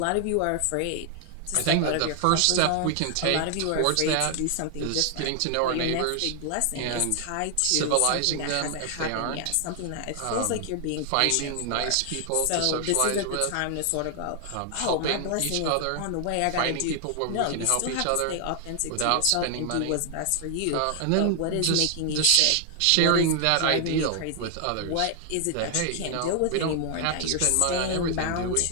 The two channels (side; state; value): both; different; correlation 0.00